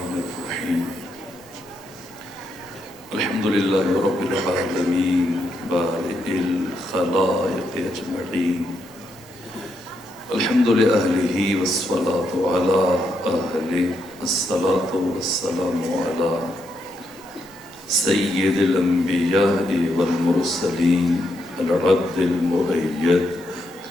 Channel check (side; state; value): both; normal; correlation 0.80